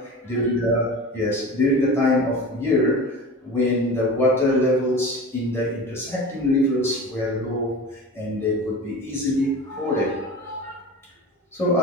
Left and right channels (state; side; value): normal; both; correlation 0.34